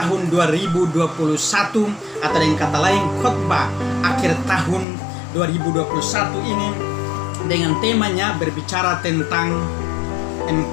2021, atau dengan kata lain khotbah akhir tahun 2021 ini, dengan temanya berbicara tentang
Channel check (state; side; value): drops out; right; at 4.9 s